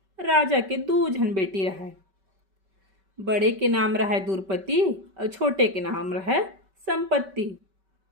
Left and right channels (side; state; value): left; late; 5.2 ms